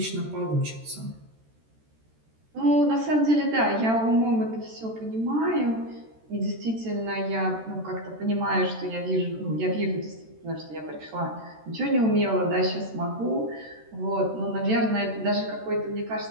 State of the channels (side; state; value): left; late; 13 ms